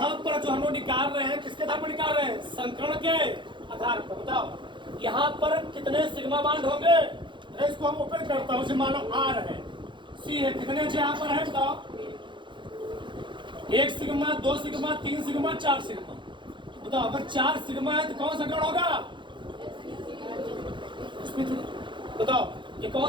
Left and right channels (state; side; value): late; left; 0.23 ms